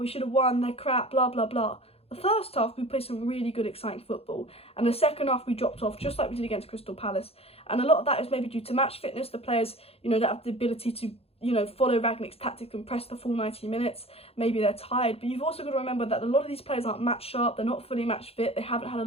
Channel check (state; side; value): late; right; 0.29 ms